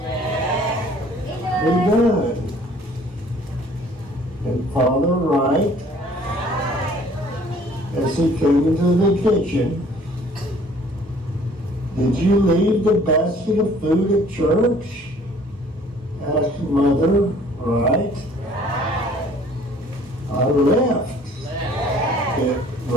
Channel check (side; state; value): both; normal; correlation 0.55